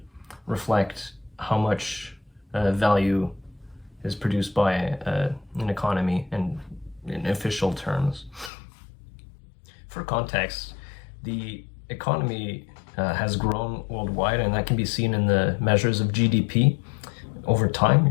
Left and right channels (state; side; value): drops out; right; at 8.5 s